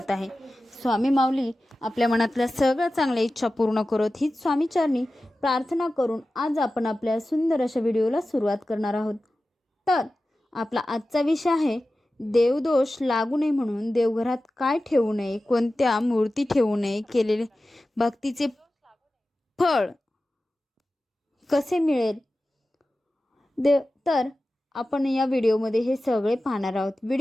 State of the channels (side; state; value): both; normal; correlation 0.95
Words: आहे. स्वामी माऊली आपल्या मनातल्या सगळ्या चांगल्या इच्छा पूर्ण करत हीच स्वामीचरणी प्रार्थना करून आज आपण आपल्या सुंदर अशा व्हिडिओला सुरुवात करणार आहोत. तर आपला आजचा विषय आहे देवदोष लागू नये म्हणून देवघरात काय ठेवू नये, कोणत्या मूर्ती ठेवू नये, केलेले भक्तीचे फळ कसे मिळेल. तर आपण या व्हिडिओमध्ये हे सगळे पाहणार आहोत.